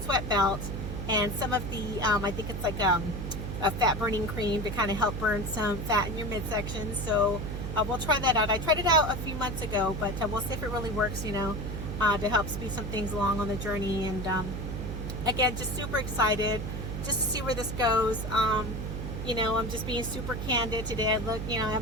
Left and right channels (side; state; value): right; noise; hum, 5 dB below the sound